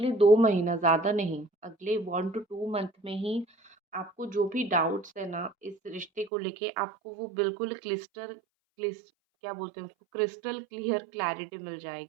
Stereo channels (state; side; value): drops out; left; at 6.3 s